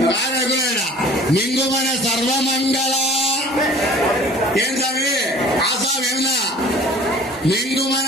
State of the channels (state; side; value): normal; both; correlation 0.47